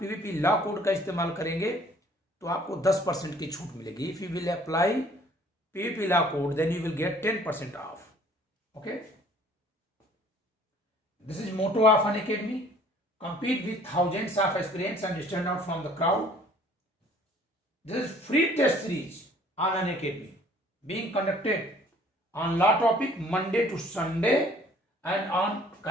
PVP लॉ कोड का इस्तेमाल करेंगे तो आपको 10% की छूट मिलेगी। If you will apply PVP law code then you will get 10% off. Okay, this is motto of Unacademy. Compete with thousands of aspirants and stand out from the crowd. This is free test series on Unacademy being conducted on law topic Monday to Sunday and on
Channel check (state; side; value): normal; both; correlation 0.56